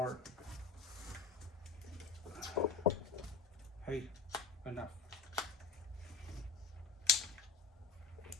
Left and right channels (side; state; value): right; quieter; 4.8 dB